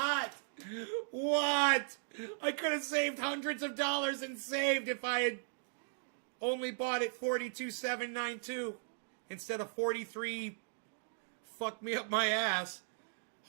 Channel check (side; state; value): left; silent; digital silence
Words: What? I could have saved hundreds of dollars and saved if I had only bought it 42.792 instead of 43. Fuck me up my ass.